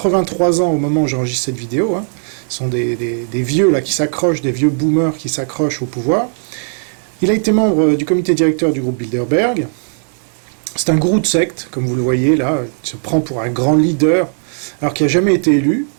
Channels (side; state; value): left; silent; digital silence